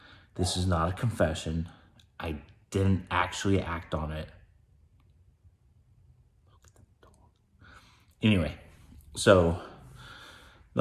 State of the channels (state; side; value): identical; both; correlation 1.00